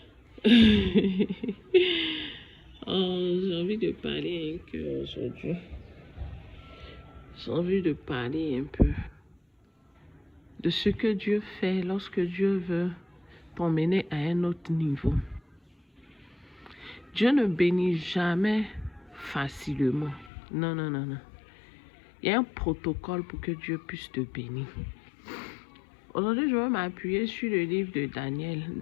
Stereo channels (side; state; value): right; drops out; at 20.3 s